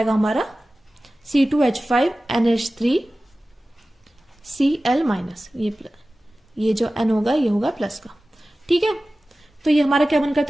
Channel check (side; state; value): both; normal; correlation 0.96